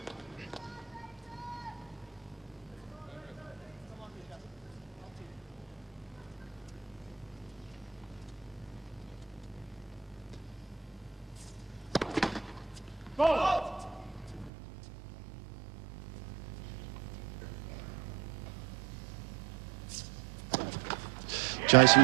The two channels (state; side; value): drops out; left; at 14.5 s